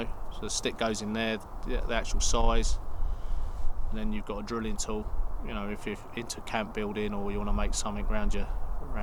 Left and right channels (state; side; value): identical; both; correlation 1.00